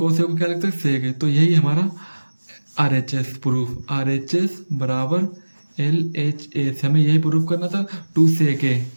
ए को क्या लिख सकते हैं सेक ए। तो यही हमारा RHS प्रूफ, RHS बराबर LHS, हमें यही प्रूफ करना था 2 सेक ए,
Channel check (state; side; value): inverted; both; correlation -1.00